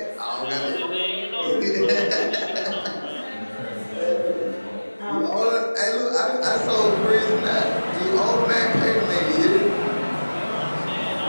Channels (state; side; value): inverted; both; correlation -1.00